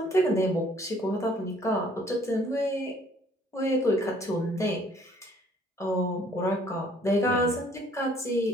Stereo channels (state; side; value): normal; both; correlation 0.60